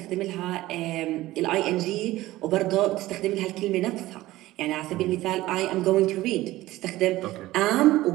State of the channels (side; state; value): left; quieter; 17.0 dB